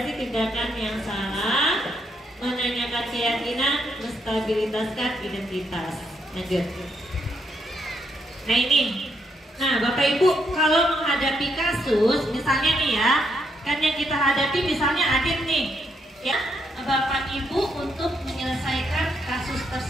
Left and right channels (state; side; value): normal; both; correlation 0.76